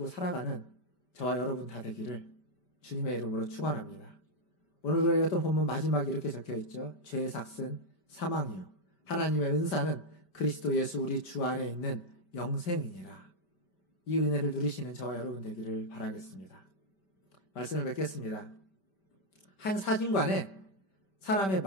살아가는 저와 여러분 다 되기를 주님의 이름으로 축원합니다. 오늘 우리가 읽었던 본문 마지막에 이렇게 적혀 있죠. 죄의 삭은 사망이요 하나님의 은사는 그리스도 예수 우리 주 안에 있는 영생이니라. 이 은혜를 누리시는 저와 여러분 되기를 바라겠습니다. 말씀을 맺겠습니다. 한 사진관에 사람의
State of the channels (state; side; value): late; right; 5.1 ms